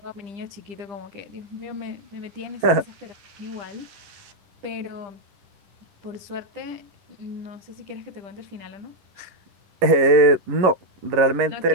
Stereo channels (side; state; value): left; late; 11 ms